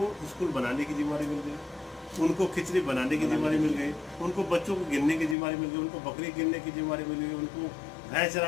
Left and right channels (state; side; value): drops out; right; at 5.4 s